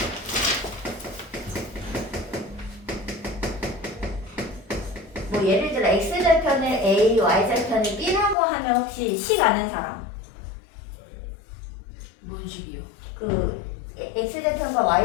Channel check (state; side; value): drops out; right; at 8.3 s